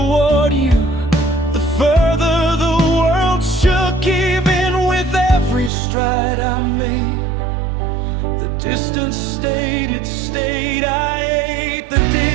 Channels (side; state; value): left; drops out; at 5.7 s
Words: you, the further the world shook. Even with every stride I made, the distance stayed, it stayed. I ate the